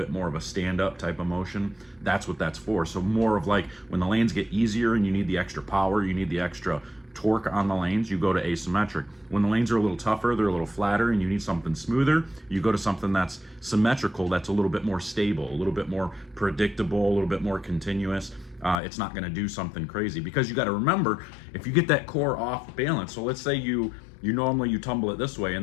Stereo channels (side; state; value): right; drops out; at 18.8 s